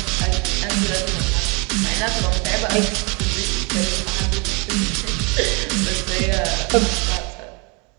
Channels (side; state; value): left; quieter; 30.6 dB